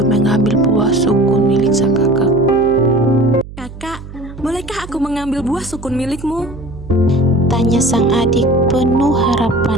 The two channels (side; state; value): right; noise; hum, 15 dB below the sound